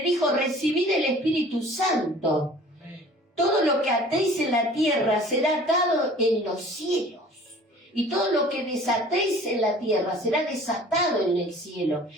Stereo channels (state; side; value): normal; both; correlation 0.48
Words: dijo: recibid el Espíritu Santo. Todo lo que atéis en la tierra será atado en los cielos. Y todo lo que desatéis en la tierra será desatado en el cielo.